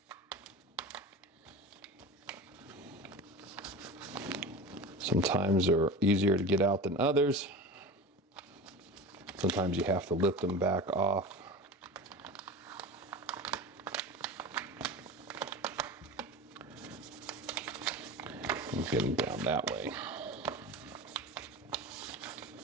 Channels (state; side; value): normal; both; correlation 0.31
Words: Sometimes they're easier to get out than others. Sometimes you have to lift them back off. And get them down that way.